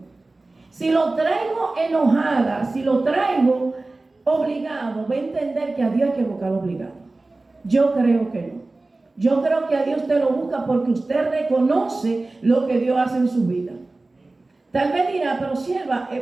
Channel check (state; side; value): quieter; left; 3.2 dB